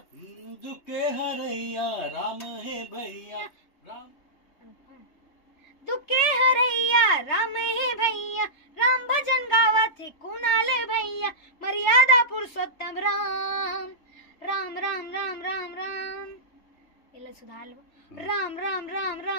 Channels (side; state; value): right; late; 3.3 ms